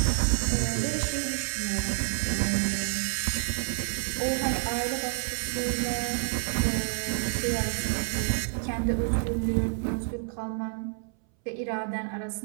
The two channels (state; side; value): silent; left; 59 dB below the other